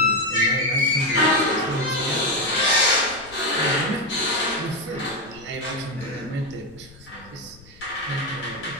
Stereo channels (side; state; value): left; noise; rumble, 23 dB below the sound